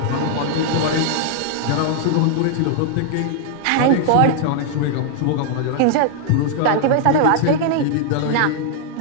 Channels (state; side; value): different; both; correlation -0.01